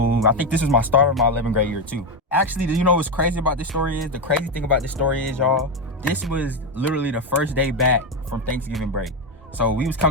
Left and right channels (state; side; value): normal; both; correlation 0.10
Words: I think this was my start of my 11th grade year too. Actually, you know what's crazy about this story is? The crazy thing about this story is, y'all, this was literally the first day back from Thanksgiving break. So we was